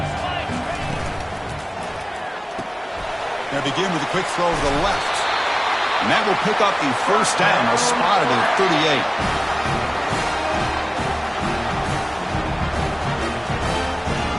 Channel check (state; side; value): identical; both; correlation 1.00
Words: They begin with a quick throw to the left. And that will pick up the first down. They'll spot it at